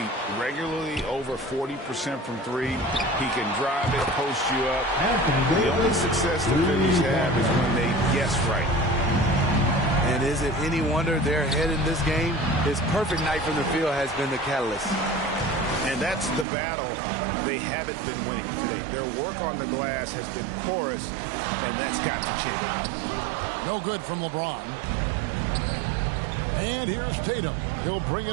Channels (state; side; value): drops out; left; at 16.4 s